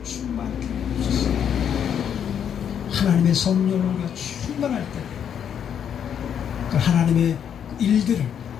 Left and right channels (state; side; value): quieter; right; 8.6 dB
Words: 충만케 해주옵소서. 하나님의 성령으로 우리가 충만할 때 그 하나님의 일들을,